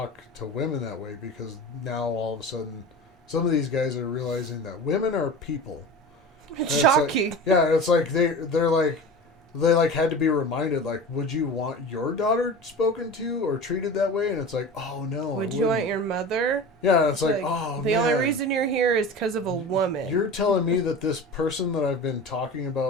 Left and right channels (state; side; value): normal; both; correlation 0.33